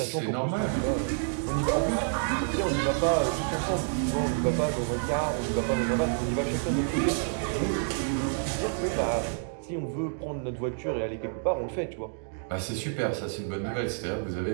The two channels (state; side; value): silent; left; 59 dB below the other